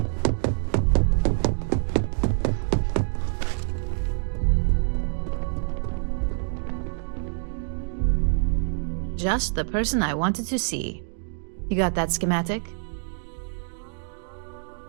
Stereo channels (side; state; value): left; silent; 60 dB below the other